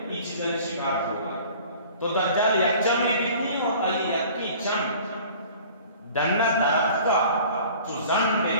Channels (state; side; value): inverted; both; correlation -0.47